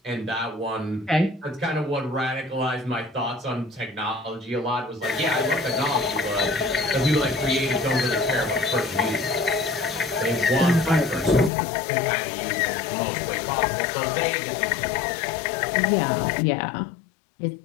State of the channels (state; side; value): drops out; right; at 11.5 s